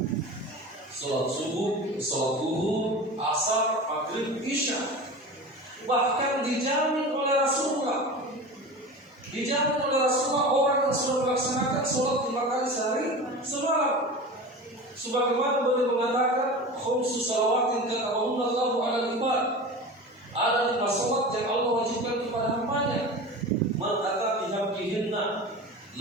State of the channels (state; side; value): normal; both; correlation 0.32